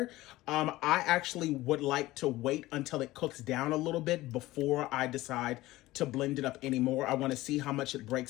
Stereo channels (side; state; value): right; quieter; 17.7 dB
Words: I actually would like to wait until it cooks down a little bit before I decide to blend it up anymore. I want to see how much it